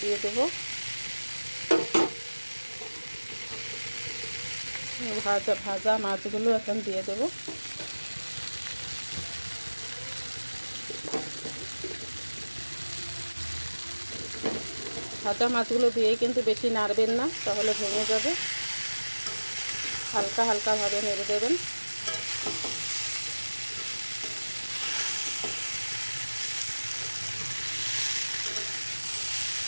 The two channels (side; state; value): both; inverted; correlation -1.00